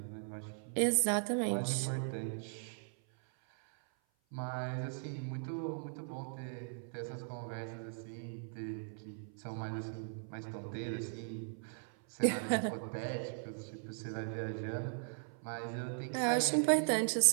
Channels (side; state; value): left; silent; 52 dB below the other